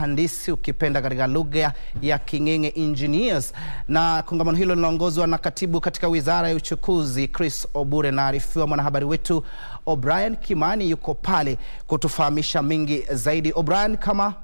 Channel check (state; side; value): inverted; both; correlation -1.00